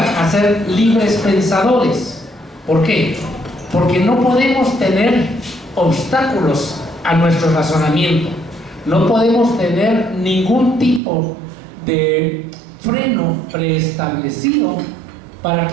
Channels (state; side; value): drops out; left; at 11.0 s